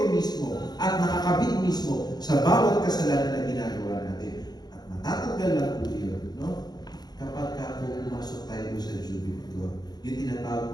mismo at nakakabit mismo sa bawat kasalanan na ginagawa natin. At matatanggal lang po yun, kapag pumasok tayo sa Jubilee Door, yung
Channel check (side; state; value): right; late; 0.19 ms